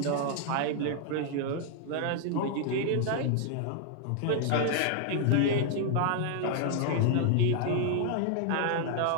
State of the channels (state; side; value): different; both; correlation 0.00